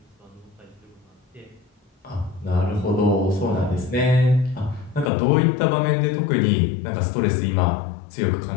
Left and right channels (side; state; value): right; drops out; at 5.1 s